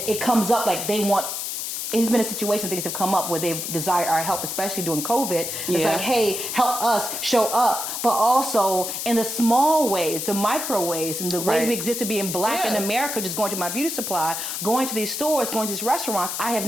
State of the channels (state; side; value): noise; left; hiss, 4 dB below the sound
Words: it comes up like it's been a situation, things have come up where they've desired our help, especially during COVID. It's like, hey, help us, show up. But also in the small ways, the micro ways, and the ways we exist to being black in America, just going to my beauty supply, going to these stores, going to these restaurants, I have